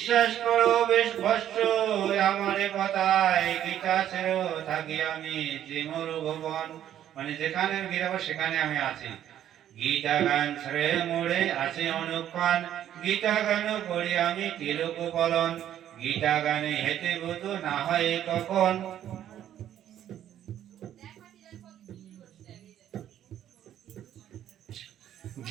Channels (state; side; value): quieter; left; 11.1 dB